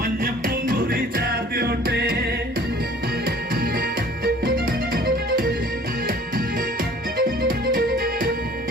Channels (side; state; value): both; normal; correlation 0.51